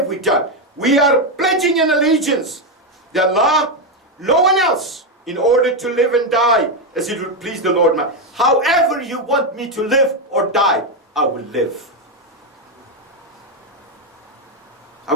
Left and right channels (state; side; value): normal; both; correlation 0.06